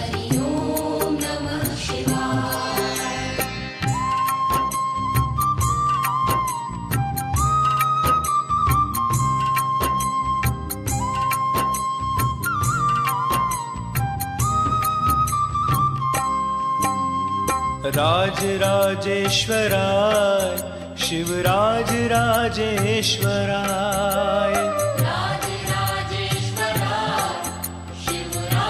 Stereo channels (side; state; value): both; identical; correlation 1.00